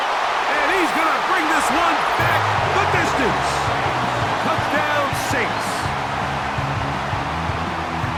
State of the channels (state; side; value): identical; both; correlation 1.00